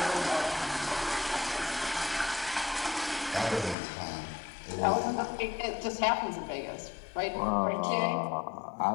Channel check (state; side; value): drops out; right; at 3.8 s